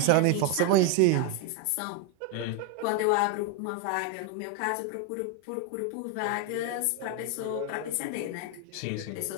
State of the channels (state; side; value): different; both; correlation 0.01